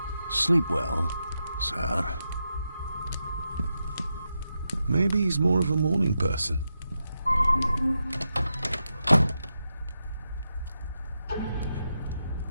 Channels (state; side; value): inverted; both; correlation -0.87